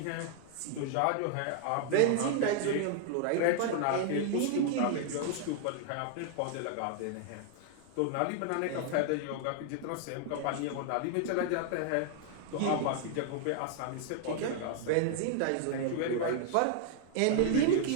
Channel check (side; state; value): both; different; correlation 0.00